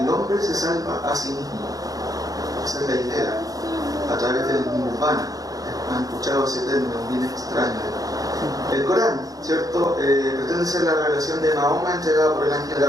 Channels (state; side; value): late; left; 0.17 ms